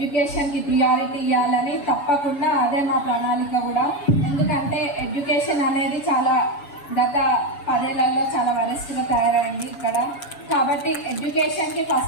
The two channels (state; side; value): late; right; 7.0 ms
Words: ప్రియారిటీ ఇవ్వాలని. తప్పకుండా అదే మా ప్రణాళిక కూడా. ఎందుకంటే ఎడ్యుకేషన్ అనేది చాలా గత 10 ఏళ్లలో చాలా వరెస్ట్గా తయారైంది ఇక్కడ. కాబట్టి ఎడ్యుకేషన్కి